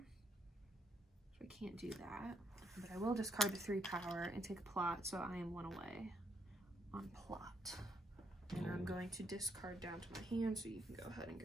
So I can't do that. But I will discard the 3 power and take a plot, so I am 1 away on plot. And I'm going to discard down to my hand, so you can go ahead and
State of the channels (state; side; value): normal; both; correlation 0.73